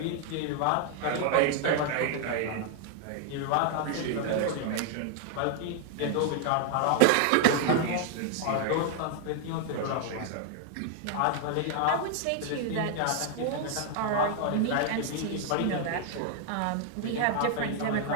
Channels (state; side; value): different; both; correlation 0.00